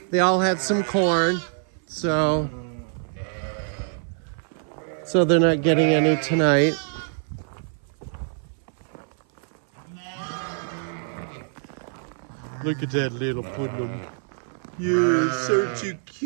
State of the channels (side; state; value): left; silent; 57 dB below the other